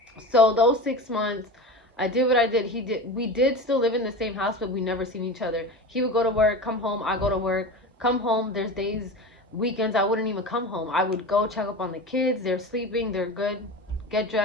So those 6 months, I did what I did. We did still live in the same house, but we never seen each other. He would go to work, come home, I go to work, come home. There's days, weekends, I wouldn't even come home. I would go check up on the kids. They're sleeping, they're good, get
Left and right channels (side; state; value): both; normal; correlation 0.29